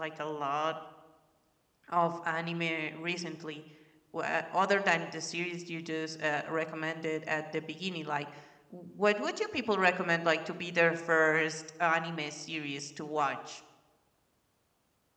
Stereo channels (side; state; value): both; identical; correlation 1.00